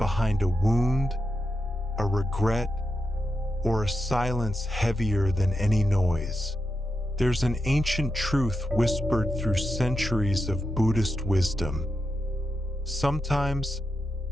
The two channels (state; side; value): normal; both; correlation 0.87